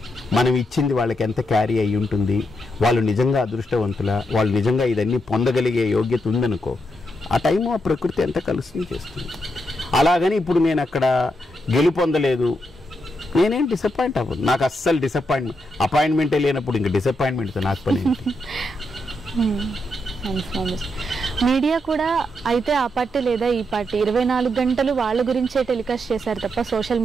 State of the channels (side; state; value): both; normal; correlation 0.82